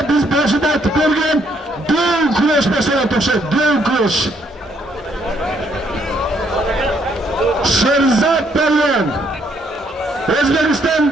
biz boshida aytib ko'rgan do'l kurash masalasi o'xshaydi, do'l kurash. Sherzod Palvon, O'zbekiston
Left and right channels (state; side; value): normal; both; correlation 0.70